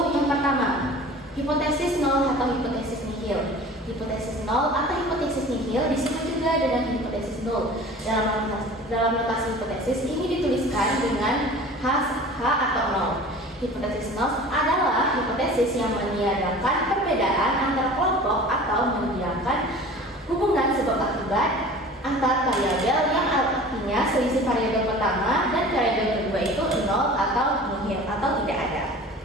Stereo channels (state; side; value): normal; both; correlation 0.41